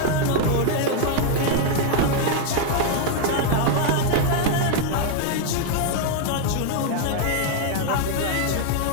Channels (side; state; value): both; different; correlation 0.00